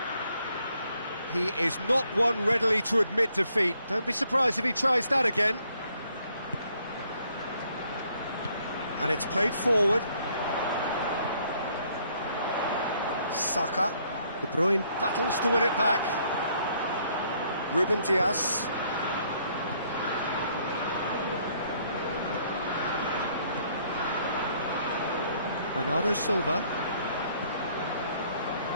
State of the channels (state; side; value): inverted; both; correlation -0.67